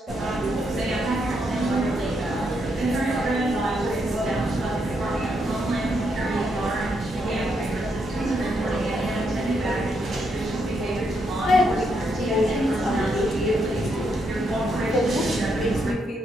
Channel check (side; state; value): both; normal; correlation 0.78